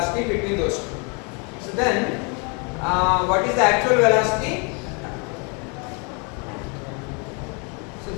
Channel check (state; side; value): quieter; right; 34.4 dB